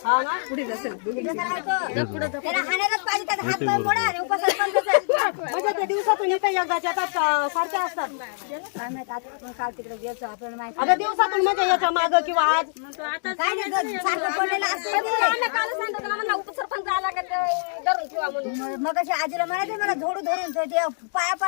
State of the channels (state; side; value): silent; right; digital silence